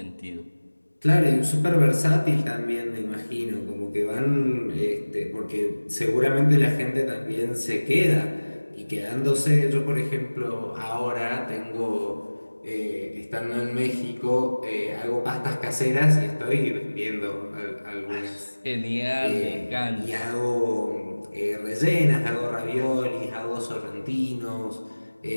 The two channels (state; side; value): inverted; both; correlation -1.00